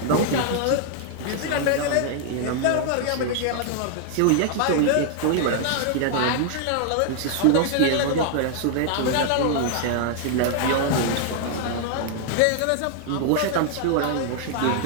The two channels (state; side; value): different; both; correlation 0.00